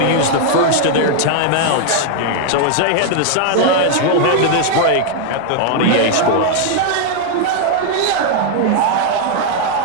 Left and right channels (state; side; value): different; both; correlation 0.00